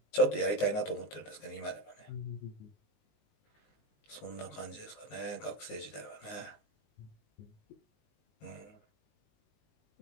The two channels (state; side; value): late; right; 19 ms